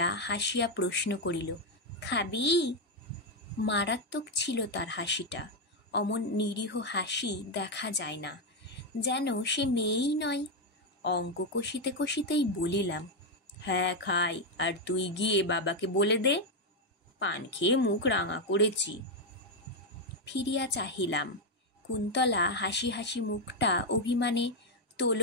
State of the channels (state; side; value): normal; both; correlation 0.03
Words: হাসিয়া প্রশ্ন করিল, খাবি? মারাত্মক ছিল তার হাসিটা। অমন নিরীহ হাসি দেখা যায় না, যেন সে মেয়েই নয়। অঙ্ক কষিতে কষিতেই বলিলাম, হ্যাঁ খাই, আর তুই গিয়ে বাবাকে বলে দে, পান খেয়ে মুখ রাঙা করেছি। ফিরিয়া চাহিলাম। কুন্তলা হাসি হাসি মুখটা অভিমানে